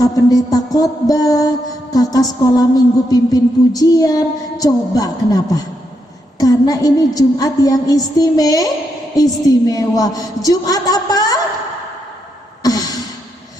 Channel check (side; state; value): both; normal; correlation 0.81